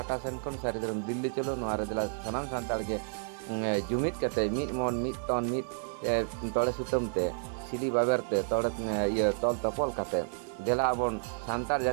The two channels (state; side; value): silent; left; 57 dB below the other